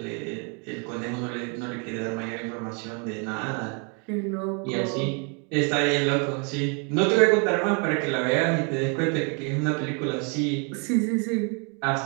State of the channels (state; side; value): quieter; left; 36.4 dB